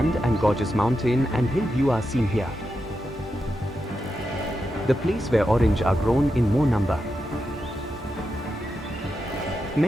and gorgeous mountain and hill view are seen here. The place where orange are grown in more number.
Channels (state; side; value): normal; both; correlation 0.87